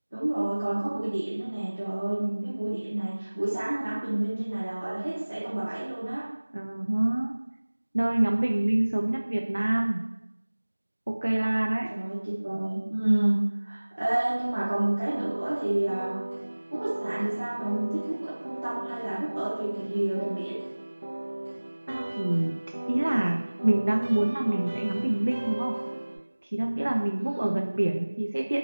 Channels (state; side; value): inverted; both; correlation -1.00